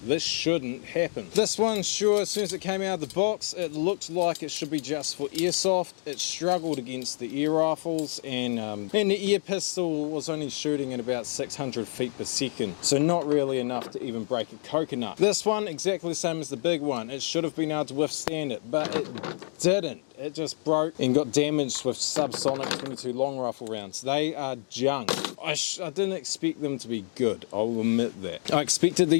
This shouldn't happen. This one, sure, as soon as it came out of the box, it looked like it should be just for airsoft. It struggled against the air rifles, and the air pistol was only shooting at about 600 feet per second, so not really enough to even break a coconut. This one, exactly the same as the big one. It should have been able to withstand it, but it didn't. It just broke and got damaged with subsonic 22 long rifle rounds. They are junk. I didn't expect them to be good, I'll admit that. I expected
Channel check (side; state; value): right; silent; digital silence